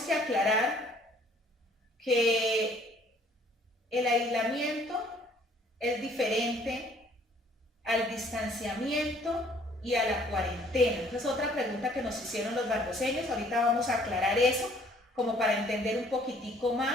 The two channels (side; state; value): both; normal; correlation 0.59